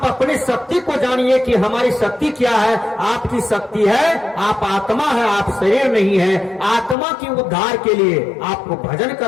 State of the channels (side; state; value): right; drops out; at 7.0 s